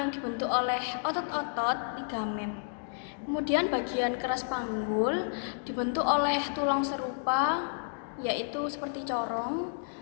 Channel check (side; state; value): right; silent; digital silence